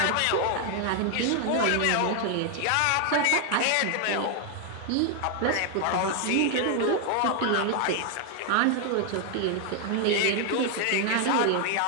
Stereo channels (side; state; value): both; different; correlation 0.00